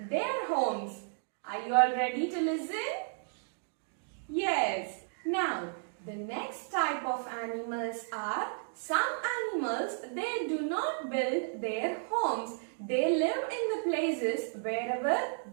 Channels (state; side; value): silent; left; digital silence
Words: their homes. Are you all ready to listen? Yes. Now, the next type of animals are some animals, they do not build their homes. They live in the places wherever